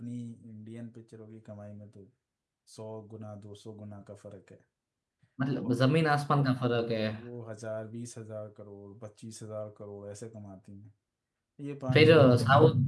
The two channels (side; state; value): both; identical; correlation 1.00